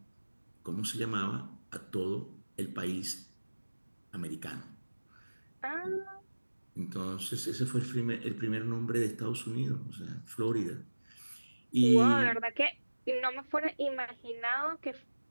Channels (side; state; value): both; inverted; correlation -1.00